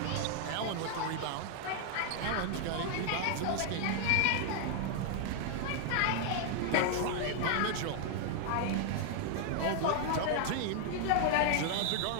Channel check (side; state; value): both; different; correlation 0.00